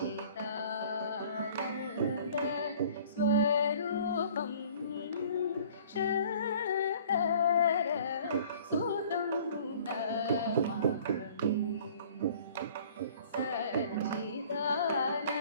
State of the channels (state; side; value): inverted; both; correlation -0.51